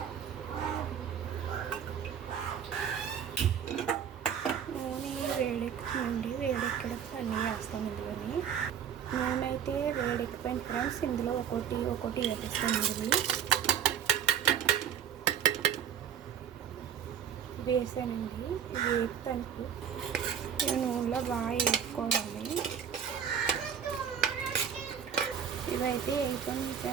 వేడెక్కడానికి అన్నీ వేస్తాం ఇందులోని. నూనె అయితే వేడెక్కిపోయింది ఫ్రెండ్స్. ఇందులో ఒక్కొక్కటి వేస్తామండి. వేసానండి. వేపుతానికి ఈ నూనెలో బాగా వేసుకోవాలి. ఇవైతే వేసుకుంటాం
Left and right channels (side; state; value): left; quieter; 8.5 dB